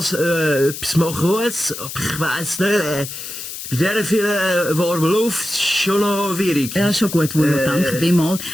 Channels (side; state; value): left; noise; hiss, 9 dB below the sound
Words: etwas machen muss. Aber ich weiss nicht, bei dieser vielen warmen Luft ist es schon noch schwierig. Ja, schon gut, Wunder, danke vielmals.